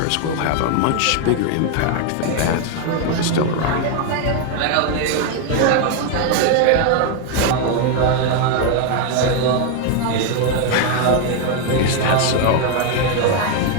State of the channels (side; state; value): both; different; correlation 0.01